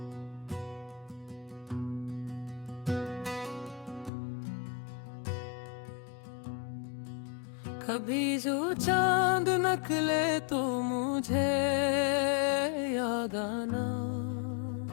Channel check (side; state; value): right; drops out; at 4.1 s